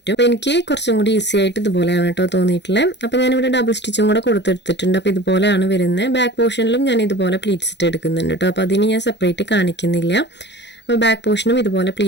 അപ്പോൾ എനിക്ക് കുറച്ചും കൂടി ഈസി ആയിട്ട് ഇതുപോലെയാണ് കേട്ടോ തോന്നിയിട്ടുള്ളത്. അപ്പോൾ ഞാനിവിടെ ഡബിൾ സ്റ്റിച്ചും കൂടെ കൊടുത്തെടുത്തിട്ടുണ്ട്. അപ്പോൾ ഇതുപോലെയാണ് വരുന്നത്. ബാക്ക് പോർഷനിലും ഞാൻ ഇതുപോലെ പ്ലീറ്റ്സ് ഇട്ട് എടുക്കുന്നുണ്ട് കേട്ടോ. അപ്പോൾ അതിന് ഞാൻ സെപ്പറേറ്റ് കാണിക്കുന്നില്ല. അപ്പോൾ ബാക്ക് പോർഷനും ഇതുപോലെ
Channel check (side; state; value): right; late; 0.51 ms